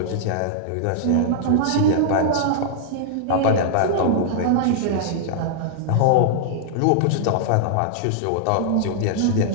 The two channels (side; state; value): both; different; correlation -0.01